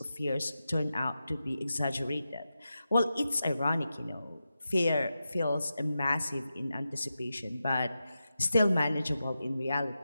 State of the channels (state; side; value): inverted; both; correlation -0.90